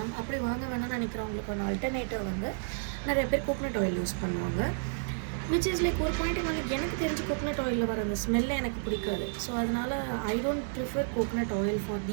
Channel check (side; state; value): left; silent; 57 dB below the other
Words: அப்படி வாங்க வேணாம்னு நினைக்கிறவங்களுக்கான ஆல்டர்னேட்டிவ் வந்து நிறைய பேர் கோகனட் ஆயில் யூஸ் பண்ணுவாங்க. விச் இஸ் லைக் ஒரு பாயிண்ட்டுக்கு வந்து எனக்கு தெரிஞ்சு கோகனட் ஆயிலில் வர அந்த ஸ்மெல்லே எனக்கு பிடிக்காது. ஸோ அதனால் I don't prefer coconut oil for